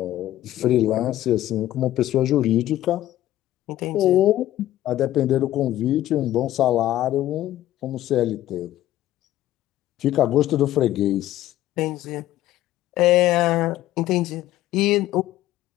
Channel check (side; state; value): right; quieter; 14.0 dB